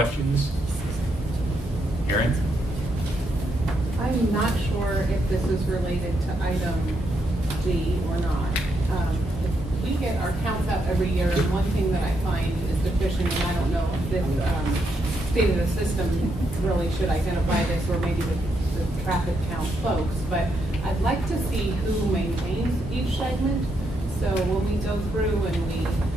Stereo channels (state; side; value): normal; both; correlation 0.79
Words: Erin? I'm not sure if this is related to item D or not. We get our counts out every year, and one thing that I find is deficient, and I don't know if this state of the system really should identify this, or maybe the traffic count folks, but I'd like to see who maintains each segment. So when we go through and